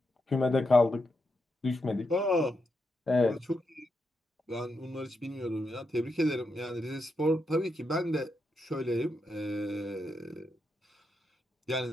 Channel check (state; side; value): normal; both; correlation 0.84